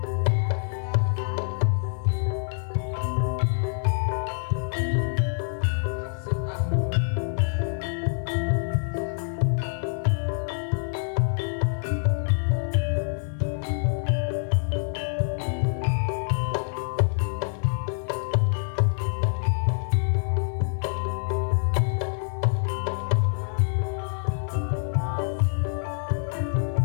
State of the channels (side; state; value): right; silent; 57 dB below the other